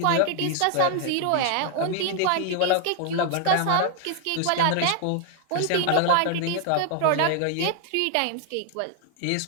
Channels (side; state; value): both; different; correlation 0.00